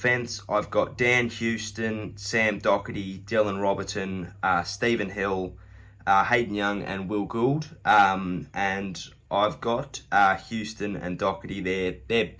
I've got Dan Houston, Sam Doherty, Dylan Robertson, Stephen Hill, Hayden Young and Will Gould. And I've got Houston and Doherty there. They're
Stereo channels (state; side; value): identical; both; correlation 1.00